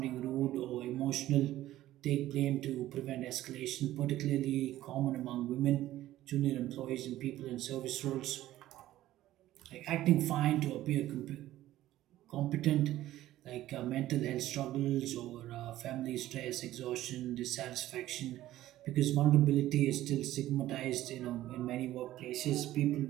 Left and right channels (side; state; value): left; quieter; 14.5 dB